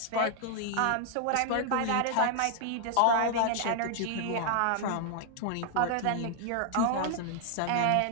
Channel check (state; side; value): different; both; correlation -0.01